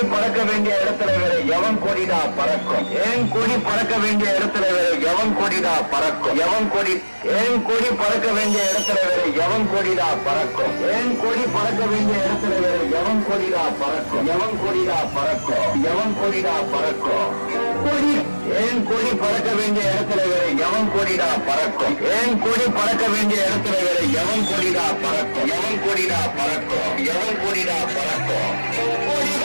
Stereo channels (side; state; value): both; inverted; correlation -1.00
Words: பறக்க வேண்டிய இடத்துல வேற எவன் கொடிடா பறக்கும்? ஏன் கொடி பறக்க வேண்டிய இடத்துல வேற எவன் கொடிடா பறக்கும்? எவன் கொடி ஏன் கொடி பறக்க வேண்டிய இடத்துல வேற எவன் கொடிடா பறக்கும்? ஏன் கொடி பறக்க வேண்டிய இடத்துல வேற எவன் கொடிடா பறக்கும்? எவன் கொடிடா பறக்கும்? எவன் கொடிடா பறக்கும்? கொடி ஏன் கொடி பறக்க வேண்டிய இடத்துல வேற எவன் கொடிடா பறக்கும்? ஏன் கொடி பறக்க வேண்டிய இடத்துல வேற எவன் கொடிடா பறக்கும்? எவன் கொடிடா பறக்கும்? எவன் கொடிடா பறக்கும்?